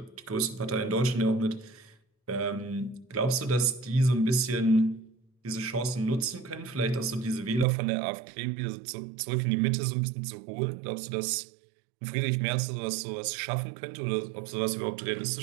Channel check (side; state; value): left; drops out; at 7.7 s